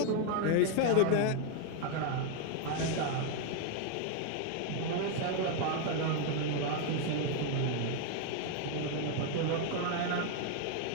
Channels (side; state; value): both; different; correlation 0.00